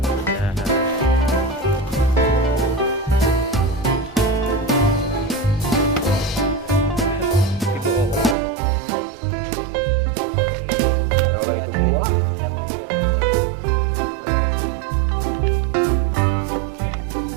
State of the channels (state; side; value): drops out; left; at 8.3 s